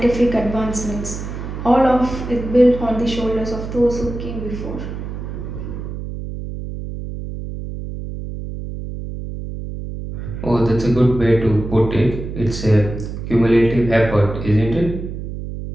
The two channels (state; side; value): noise; right; hum, 8 dB below the sound